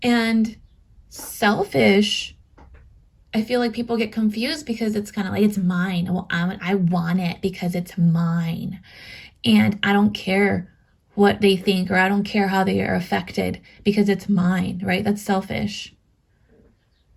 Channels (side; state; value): both; identical; correlation 1.00